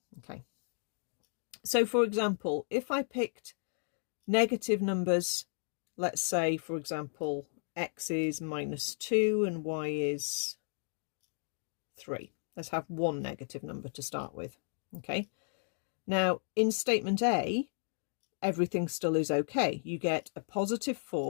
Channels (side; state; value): right; silent; digital silence